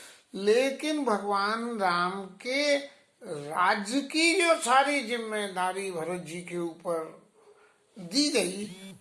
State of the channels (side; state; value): both; identical; correlation 1.00